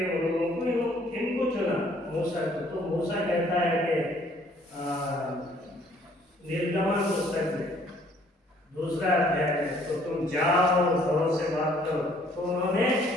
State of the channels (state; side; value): normal; both; correlation 0.61